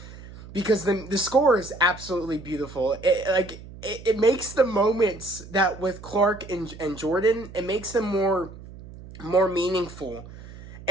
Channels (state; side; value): noise; right; hum, 16 dB below the sound